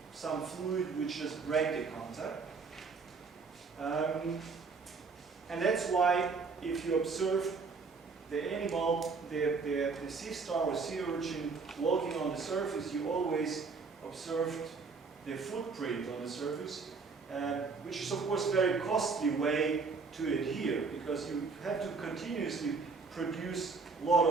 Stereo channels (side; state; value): left; quieter; 4.7 dB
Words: some fluid which just break the contact. And that's why, if you observe the animal, the sea star or sea urchin walking on the surface, you always observed the footprint on the surface, which is of course a very costly way to adhere, because you have to continuously produce a lot